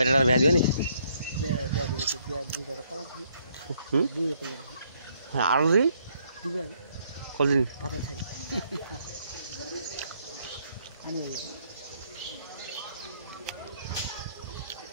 বিয়া দিবে নি? হ্যাঁ আরো দিই কদিন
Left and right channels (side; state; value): both; inverted; correlation -0.70